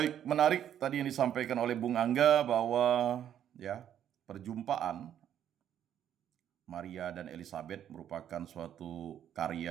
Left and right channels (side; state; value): left; quieter; 10.1 dB